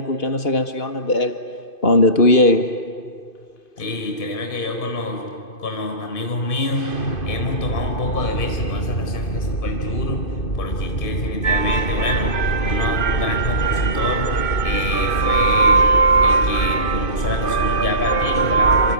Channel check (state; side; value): late; right; 2.5 ms